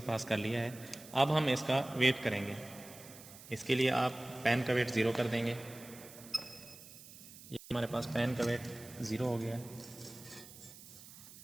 पास कर लिया है। अब हम इसका वेट करेंगे। इसके लिए आप पैन का वेट 0 कर देंगे। ये हमारे पास पैन का वेट 0 हो गया।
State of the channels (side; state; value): right; noise; hiss, 17 dB below the sound